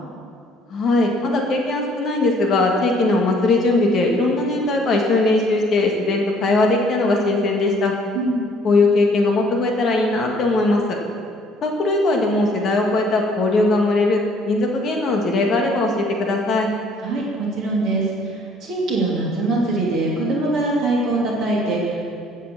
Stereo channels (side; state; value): both; normal; correlation 0.60